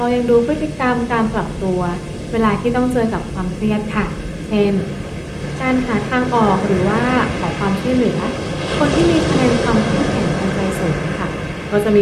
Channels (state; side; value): identical; both; correlation 1.00